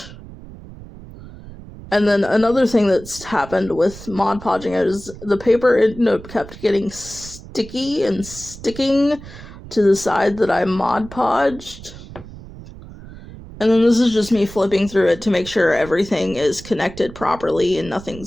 And then another thing that's happened with Mod Podging is the paper ended up kept getting sticky and sticking to the side that I Mod Podged. And then this is just me flipping through it to make sure everything is connected properly and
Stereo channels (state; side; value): noise; right; rumble, 16 dB below the sound